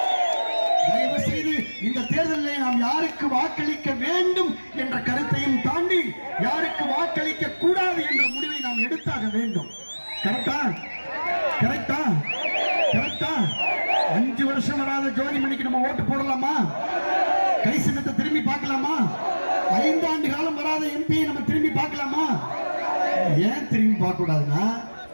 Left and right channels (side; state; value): both; inverted; correlation -1.00